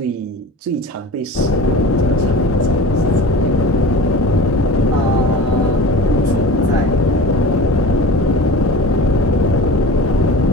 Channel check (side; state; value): both; normal; correlation 0.36